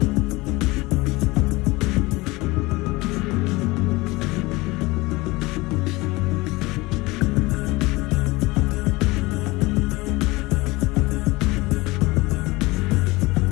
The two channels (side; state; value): right; quieter; 22.1 dB